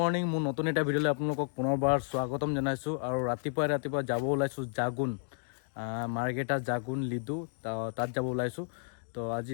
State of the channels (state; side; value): silent; right; 56 dB below the other